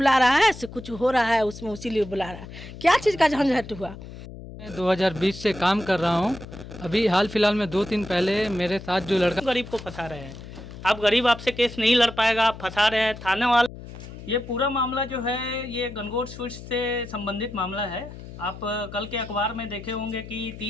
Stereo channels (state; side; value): noise; left; hum, 14 dB below the sound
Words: रहा है, से कुछ हो रहा है उसमें, उसीलिए बुला रहा है। क्या चीज़ का झंझट हुआ। मैं 2020 से काम कर रहा हूँ। अभी हाल फिलहाल में 2 दिन पहले मेरे साथ जो लड़का गरीब को फंसा रहे हैं, आप गरीब आपसे केस नहीं लड़ पाएगा, आप फंसा रहे हैं थाने वाला। ये पूरा मामला जो है ये गनगौर स्वीट्स से संबंधित मामला है। आप कल के अखबार में देखे होंगे कि